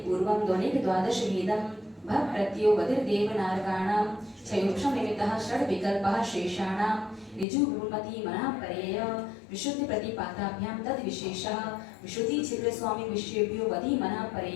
पूर्वं ध्वनिक द्वादश भेदं भक् प्रत्ययो बधिर्देवनारकाणां क्षयोक्षं निमित्तः षड् विकल्पः शेषाणां ऋजु विभूमति मनः परेय विशुद्धि प्रतिपाताभ्यां तद विशेषः विशुद्धि छिद्र स्वामी विषयेभ्यो वधि मनः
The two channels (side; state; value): right; drops out; at 7.5 s